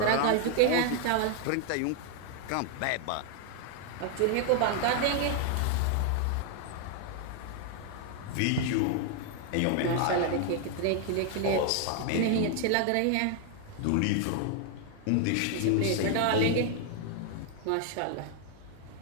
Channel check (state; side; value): different; both; correlation 0.00